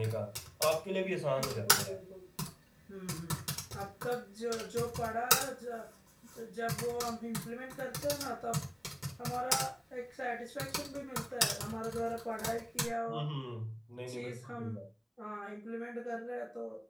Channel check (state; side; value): identical; both; correlation 1.00